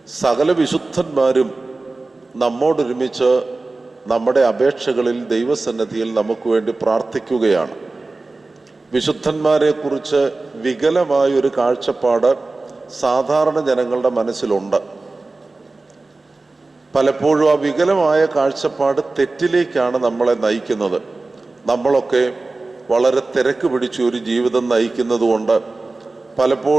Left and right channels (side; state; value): left; quieter; 3.4 dB